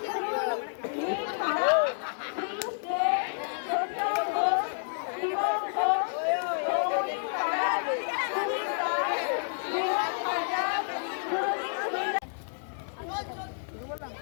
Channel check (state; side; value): silent; right; digital silence